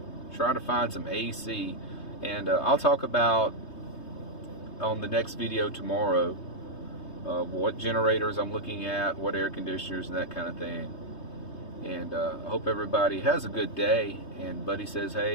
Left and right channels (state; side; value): late; right; 3.2 ms